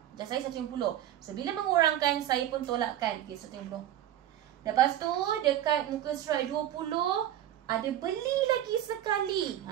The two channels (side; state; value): left; quieter; 12.1 dB